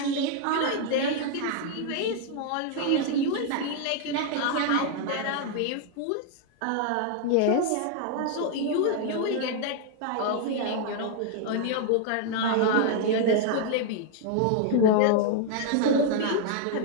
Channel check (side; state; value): both; different; correlation 0.00